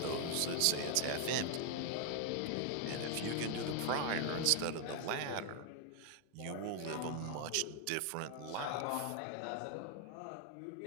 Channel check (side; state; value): both; different; correlation 0.00